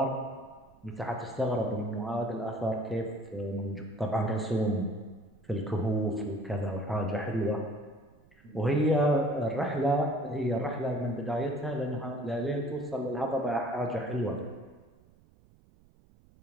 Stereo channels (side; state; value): right; noise; rumble, 28 dB below the sound